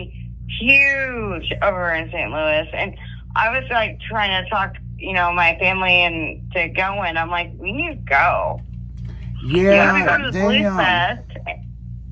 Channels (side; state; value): both; identical; correlation 1.00